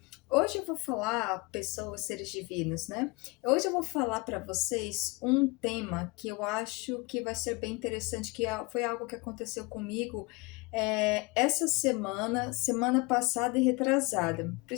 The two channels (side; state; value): right; quieter; 26.1 dB